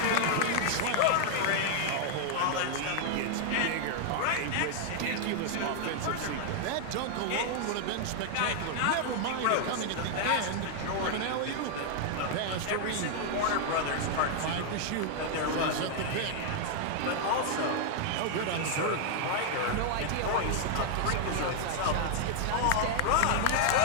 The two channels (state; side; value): different; both; correlation 0.00